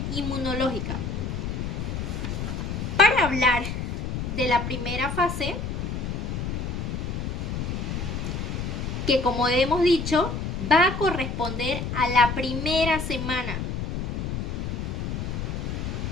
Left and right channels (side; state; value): left; noise; rumble, 3 dB below the sound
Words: inmunológica. Para hablar de la primera fase, que como hemos dicho, va a corresponder a la primera semana